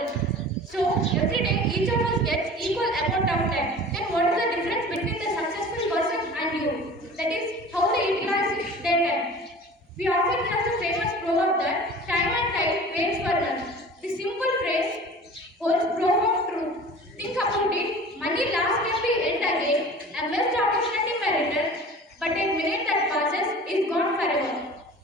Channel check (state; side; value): normal; both; correlation 0.41